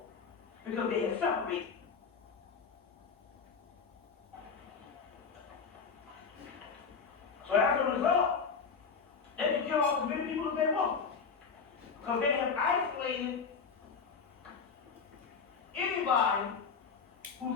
because they have separated. So as a result, they can kill off as many people as they want, because they have isolated anybody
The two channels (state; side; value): quieter; right; 5.7 dB